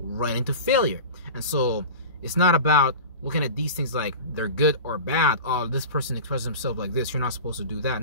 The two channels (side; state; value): both; inverted; correlation -0.32